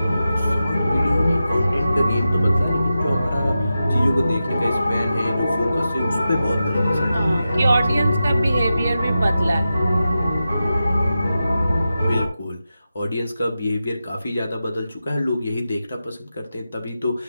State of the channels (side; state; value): both; inverted; correlation -0.91